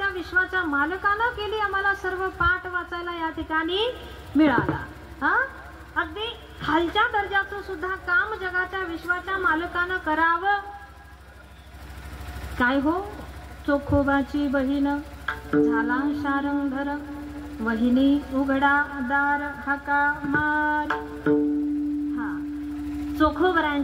विश्वाच्या मालकानं केली आम्हाला सर्व पाठ वाचायला या ठिकाणी मिळाला. अगदी खालच्या दर्जाचं सुद्धा काम जगाच्या विश्वाच्या मालकानं करावं. काय हो, चोखोबाची बहीण झाला शारंगधर, वहिनी उघडा दार हाका मार.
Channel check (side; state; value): both; identical; correlation 1.00